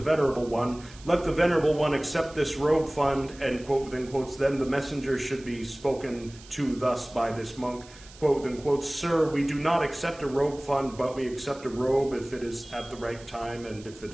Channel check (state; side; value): noise; right; hiss, 21 dB below the sound